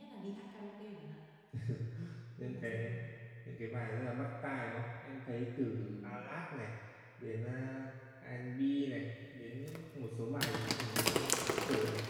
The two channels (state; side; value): identical; both; correlation 1.00